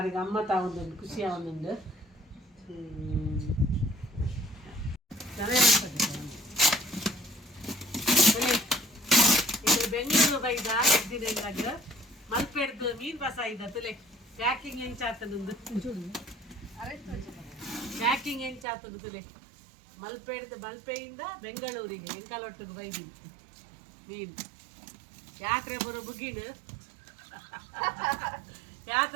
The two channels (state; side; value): drops out; left; at 18.7 s